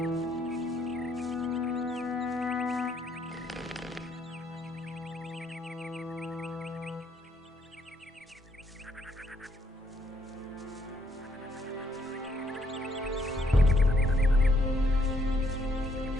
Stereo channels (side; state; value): both; normal; correlation 0.71